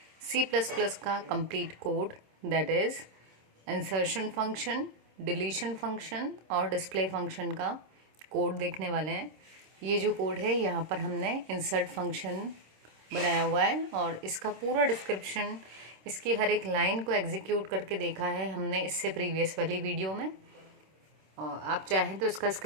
C++ का complete code, that is insertion function, deletion function और डिस्प्ले फंक्शन का कोड देखने वाले हैं। ये जो कोड है यहाँ पर हमने इंसर्ट फंक्शन बनाया हुआ है और इसका पूरा डिस्क्रिप्शन, इसकी हर एक लाइन को एग्जीक्यूट करके देखा है हमने इससे प्रीवियस वाली वीडियो में। और आप चाहें तो इसका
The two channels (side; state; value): left; late; 26 ms